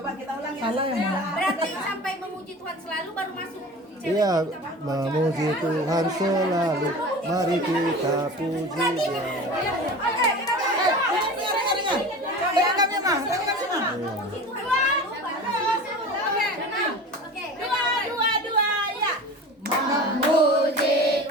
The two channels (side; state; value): both; normal; correlation 0.35